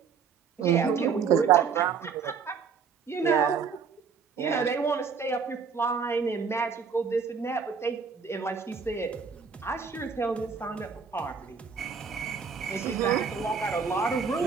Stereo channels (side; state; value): left; quieter; 6.0 dB